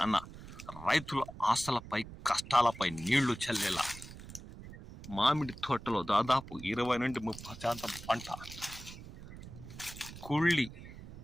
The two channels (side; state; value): right; noise; rumble, 14 dB below the sound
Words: అన్న రైతుల ఆశలపై కష్టాలపై నీళ్లు చల్లేలా మామిడి తోటలో దాదాపు 20 నుండి 30% పంట కుళ్ళి